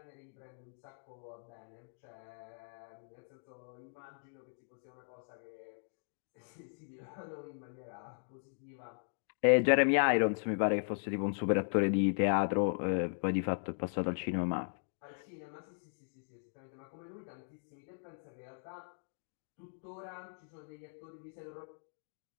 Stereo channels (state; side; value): silent; right; digital silence